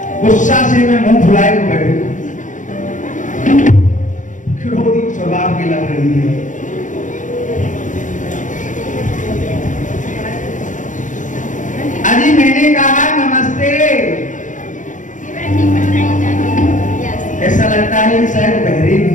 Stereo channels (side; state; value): right; late; 0.37 ms